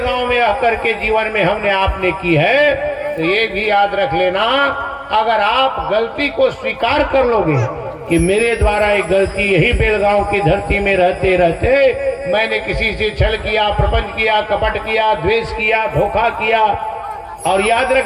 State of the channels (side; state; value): both; identical; correlation 1.00